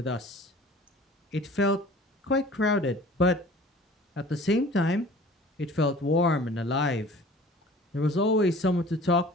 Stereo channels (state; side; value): normal; both; correlation 0.47